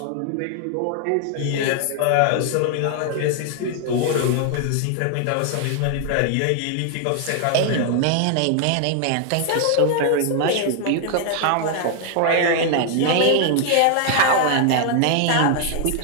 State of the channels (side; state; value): both; different; correlation 0.00